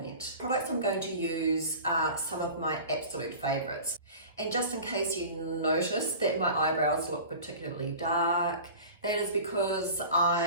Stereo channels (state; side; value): inverted; both; correlation -0.37